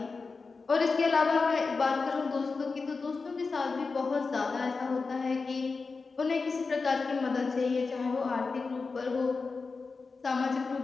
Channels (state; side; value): quieter; right; 4.4 dB